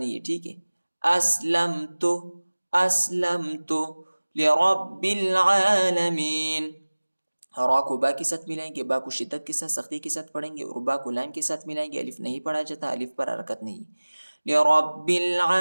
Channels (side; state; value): both; inverted; correlation -1.00